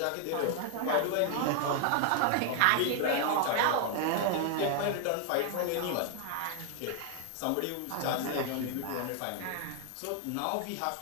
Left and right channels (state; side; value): different; both; correlation 0.00